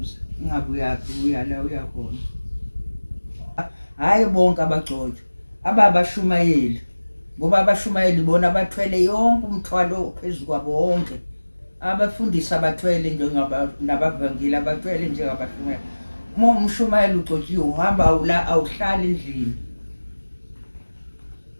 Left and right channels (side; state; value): both; inverted; correlation -1.00